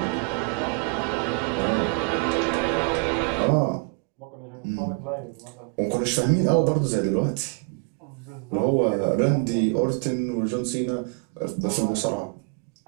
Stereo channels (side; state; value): left; quieter; 37.3 dB